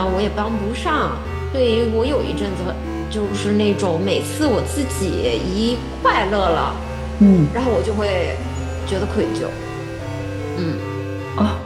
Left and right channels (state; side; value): identical; both; correlation 1.00